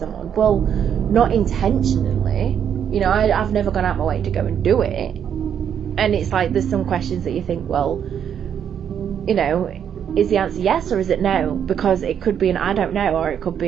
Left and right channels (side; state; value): left; quieter; 8.6 dB